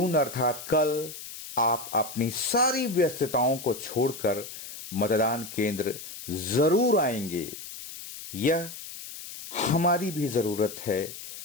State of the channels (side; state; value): left; noise; hiss, 12 dB below the sound